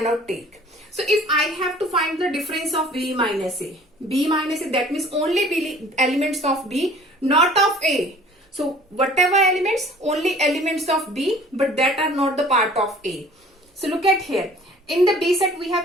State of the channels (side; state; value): both; normal; correlation 0.50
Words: take. So if I have to find the difference of B minus A, that means only B elements of B, not of A. So whatever elements, only elements of B, but that are not the part of A. So look at here. In the B set, we